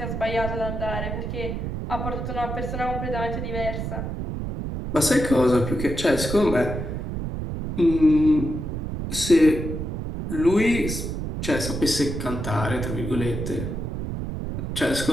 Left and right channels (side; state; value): right; noise; rumble, 4 dB below the sound